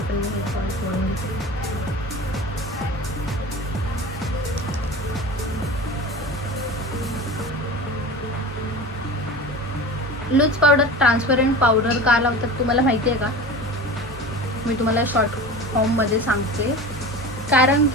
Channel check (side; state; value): both; normal; correlation 0.33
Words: Loose powder transparent powder का लावतात तुम्हाला माहिती आहे का? मी तुम्हाला शॉर्ट फॉर्ममध्ये सांगते. कारण